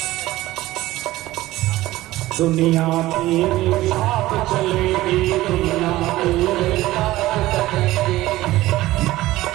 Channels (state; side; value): quieter; left; 16.9 dB